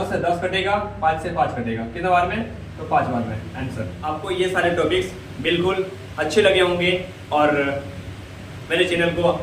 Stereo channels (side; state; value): both; identical; correlation 1.00